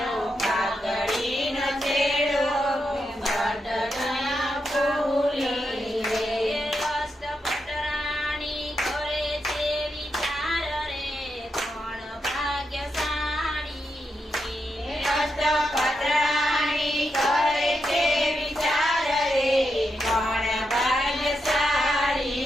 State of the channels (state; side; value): normal; both; correlation 0.84